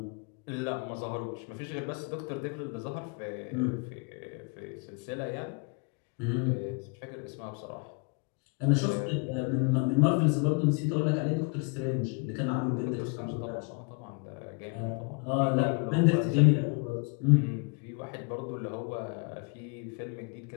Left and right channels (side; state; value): right; quieter; 33.9 dB